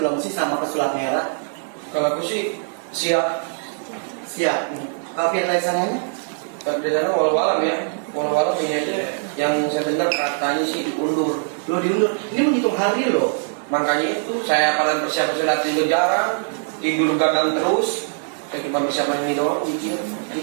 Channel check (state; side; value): silent; left; 64 dB below the other